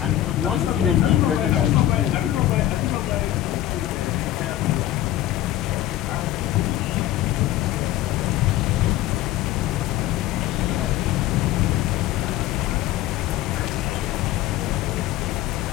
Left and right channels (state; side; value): quieter; right; 13.7 dB